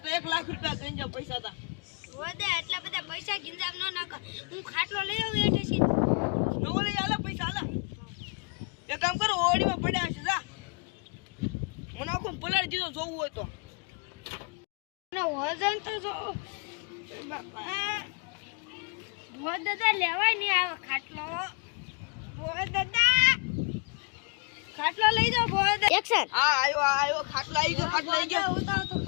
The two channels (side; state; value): right; quieter; 36.4 dB